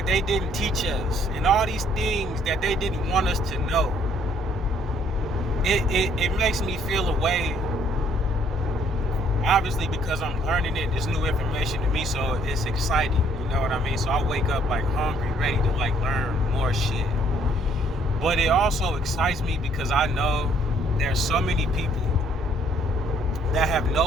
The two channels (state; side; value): normal; both; correlation 0.64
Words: they didn't teach us and all these things that they didn't want us to know, it makes me feel a way. Obviously, because I'm learning it, it's new information to me, so it's exciting. You know what I mean? So I wake up like hungry, ready to like learn more shit. But it also excites me because I know there's so many people that have